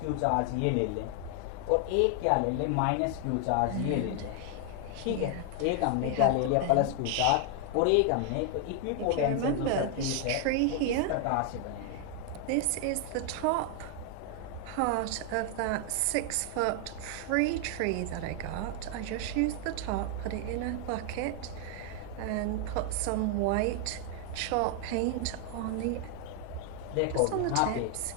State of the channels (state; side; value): different; both; correlation 0.00